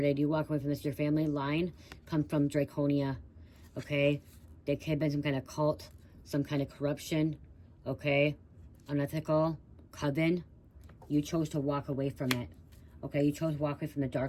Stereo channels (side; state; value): both; identical; correlation 1.00